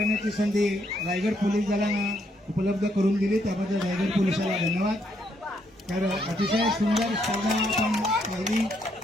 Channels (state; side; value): normal; both; correlation 0.74